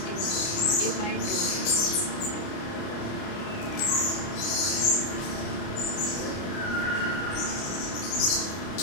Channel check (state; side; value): late; right; 29 ms